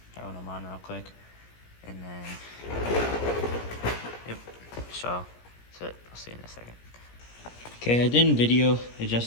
throwing them on real quick. And then, yep, so that's it. I'll see you in a second. Okay, I didn't video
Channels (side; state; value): right; late; 17 ms